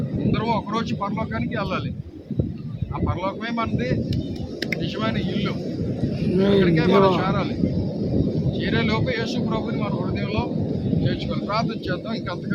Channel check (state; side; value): identical; both; correlation 1.00